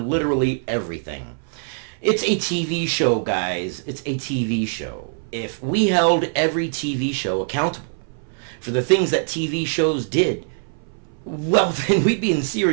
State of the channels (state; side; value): silent; left; 60 dB below the other